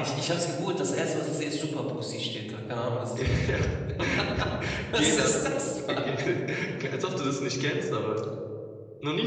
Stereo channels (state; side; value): identical; both; correlation 1.00